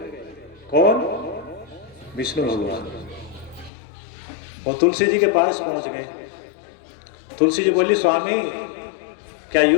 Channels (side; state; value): right; drops out; at 3.7 s